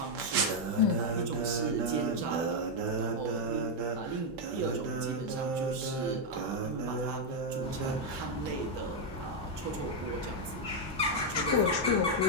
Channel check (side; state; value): both; normal; correlation 0.00